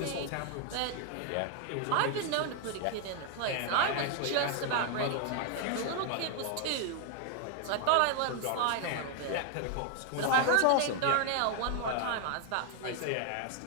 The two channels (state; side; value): different; both; correlation 0.00